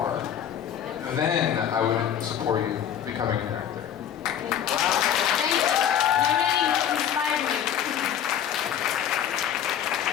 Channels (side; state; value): right; quieter; 9.5 dB